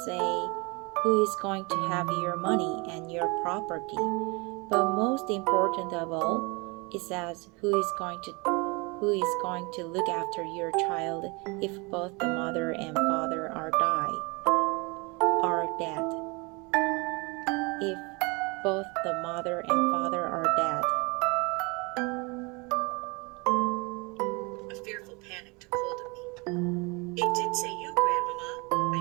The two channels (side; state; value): left; quieter; 28.2 dB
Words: say who is going to have your money and your property. But most important of all, it says who is going to look after your child if both the mother and father are dead. If both the mother and father are dead. A fearful panic took hold of me. It did say you, Grandmama,